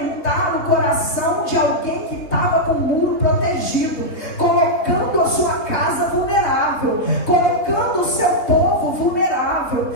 o coração de alguém que estava com o muro protegido, colocando a sua casa vulnerável, colocando o seu povo vulnerável,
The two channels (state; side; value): late; right; 3.8 ms